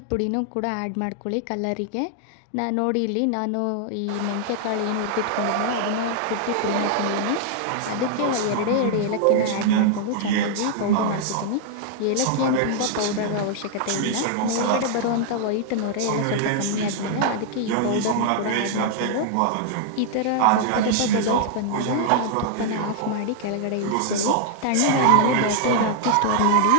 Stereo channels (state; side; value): different; both; correlation -0.01